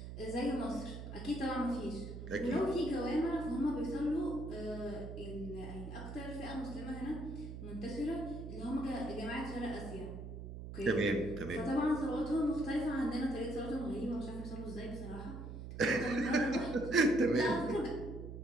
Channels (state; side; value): noise; right; hum, 9 dB below the sound